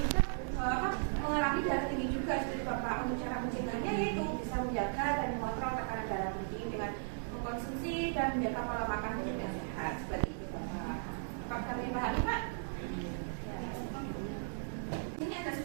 mengalami darah tinggi juga seperti Bapak. Untuk cara mencegahnya yaitu bisa menjaga dan mengontrol tekanan darah tinggi dengan mengkonsumsi dan menjaga pola makan hidup yang sehat seperti itu Bapak. Apakah kami pahami Pak? Ini ada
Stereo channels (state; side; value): silent; left; digital silence